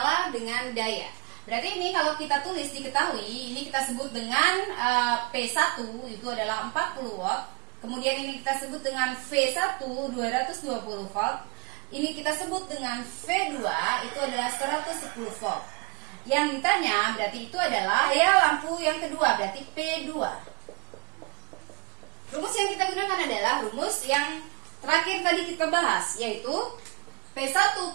dengan daya. Berarti ini kalau kita tulis diketahui, ini kita sebut dengan P1 itu adalah 40 watt. Kemudian ini kita sebut dengan V1 220 volt. Ini kita sebut dengan V2 itu adalah 110 volt. Yang ditanya berarti itu adalah daya lampu yang kedua, berarti P2. Rumus yang kita gunakan adalah rumus yang terakhir tadi kita bahas, yaitu P1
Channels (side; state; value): left; quieter; 26.6 dB